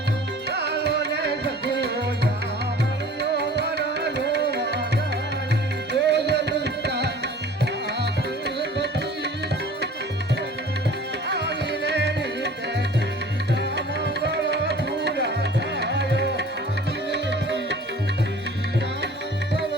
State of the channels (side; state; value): both; normal; correlation 0.46